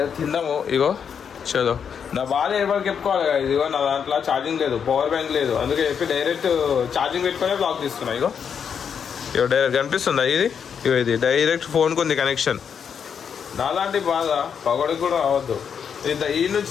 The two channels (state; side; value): quieter; right; 7.2 dB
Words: తిందాము. ఇగో చలో నా బాగా ఎవరికి చెప్పుకోవాలి. ఇదిగో నా దాంట్లో ఛార్జింగ్ లేదు, పవర్ బ్యాంక్ లేదు, అందుకే చెప్పి డైరెక్ట్ ఛార్జింగ్ పెట్టుకునే బ్లాక్ తీసుకున్నా. ఇగో డైరెక్ట్ కనిపిస్తుందా ఇది? ఇది డైరెక్ట్ ఫోన్కి ఉంది కనెక్షన్. నాలాంటి బాధ పగడికి కూడా అవ్వద్దు. ఈ నుంచి